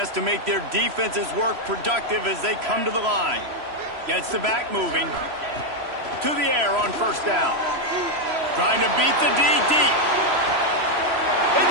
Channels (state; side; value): late; left; 3.0 ms